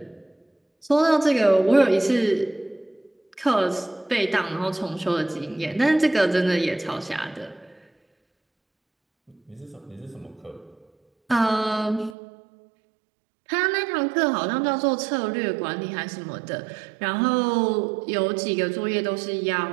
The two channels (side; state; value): left; drops out; at 12.2 s